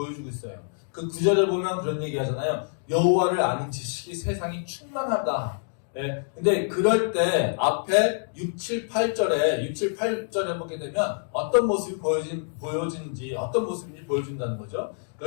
있어요. 그 구절을 보면 그런 얘기 하잖아요. 여호와를 아는 지식이 세상이 충만하다. 네. 근데 그럴 때 앞에 6, 7, 8절에 보게 되면 어떤 모습이 보여진지 어떤 모습인지 보여준다는 거죠.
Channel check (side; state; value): right; silent; digital silence